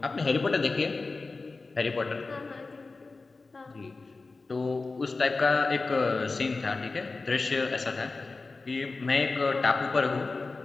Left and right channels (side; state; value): right; quieter; 3.8 dB